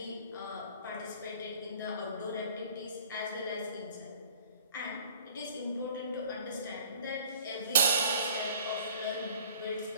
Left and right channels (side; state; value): both; inverted; correlation -0.49